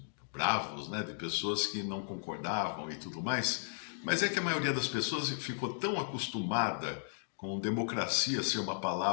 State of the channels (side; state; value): right; silent; digital silence